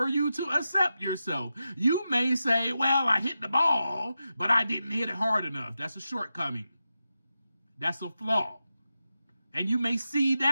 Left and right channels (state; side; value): inverted; both; correlation -0.90